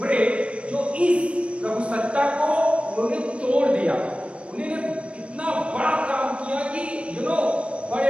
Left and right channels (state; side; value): late; left; 0.060 ms